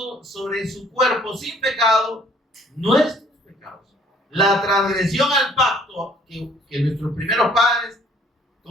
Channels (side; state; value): both; normal; correlation 0.59